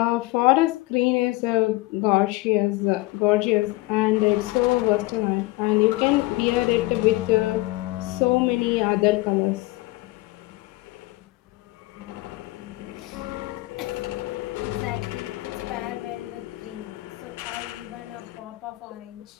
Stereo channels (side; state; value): right; quieter; 20.9 dB